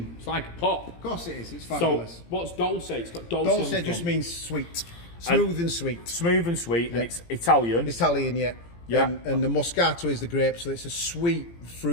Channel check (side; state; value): right; late; 17 ms